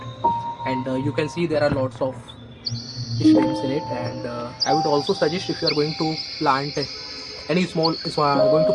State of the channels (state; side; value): identical; both; correlation 1.00